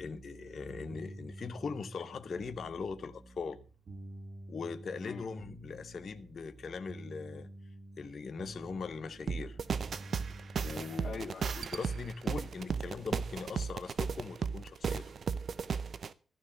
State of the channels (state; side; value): normal; both; correlation 0.82